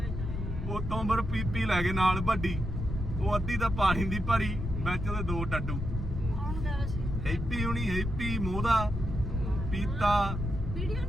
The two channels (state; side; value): noise; left; rumble, 4 dB below the sound